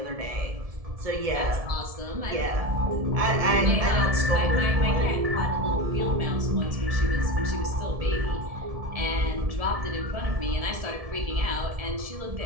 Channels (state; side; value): late; left; 1.7 ms